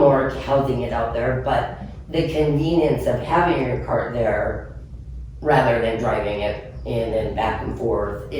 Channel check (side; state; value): both; identical; correlation 1.00